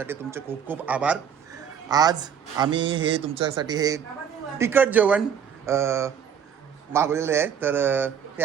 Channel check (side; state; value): left; quieter; 7.9 dB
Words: तुमचे खूप खूप आभार. आज आम्ही हे तुमच्यासाठी हे तिखट जेवण मागवलेलं आहे, तर ते